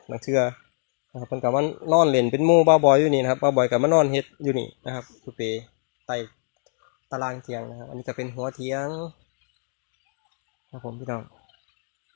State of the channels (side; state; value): right; silent; digital silence